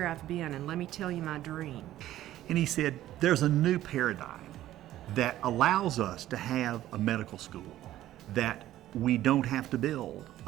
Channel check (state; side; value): quieter; left; 13.8 dB